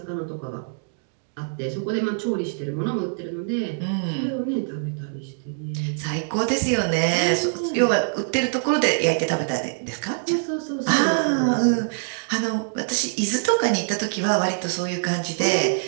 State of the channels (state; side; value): silent; left; digital silence